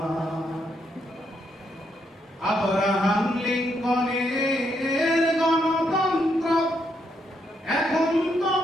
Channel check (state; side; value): normal; both; correlation 0.77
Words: আব্রাহাম লিঙ্কনের গণতন্ত্র এখন